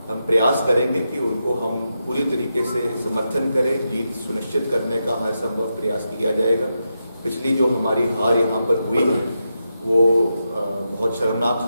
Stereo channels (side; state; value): both; inverted; correlation -0.87